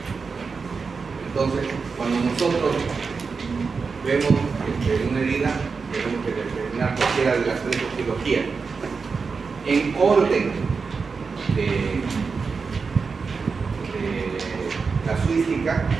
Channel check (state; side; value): quieter; left; 5.0 dB